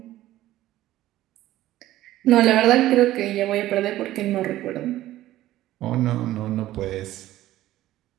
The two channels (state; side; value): quieter; left; 14.8 dB